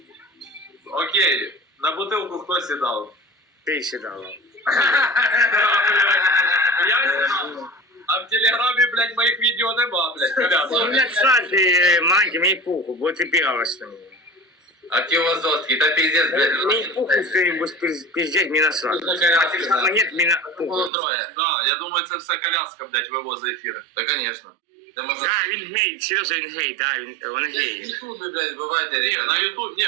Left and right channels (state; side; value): drops out; left; at 20.9 s